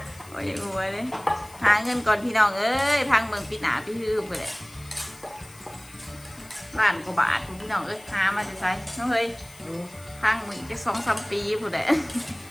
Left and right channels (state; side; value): noise; left; hiss, 22 dB below the sound